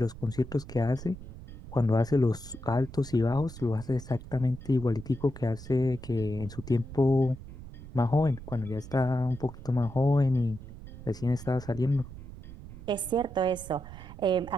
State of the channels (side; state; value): right; noise; rumble, 14 dB below the sound